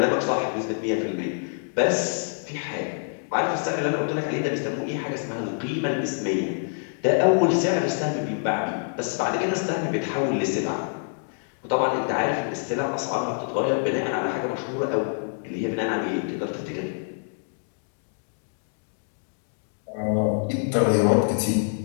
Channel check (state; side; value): silent; right; digital silence